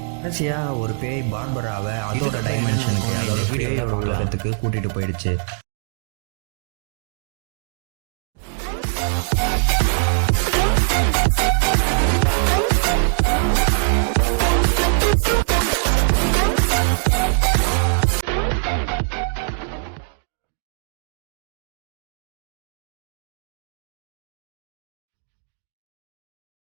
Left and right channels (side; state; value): left; silent; digital silence